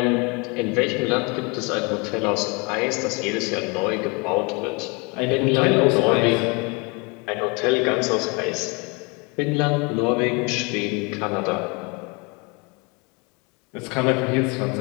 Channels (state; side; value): quieter; right; 30.0 dB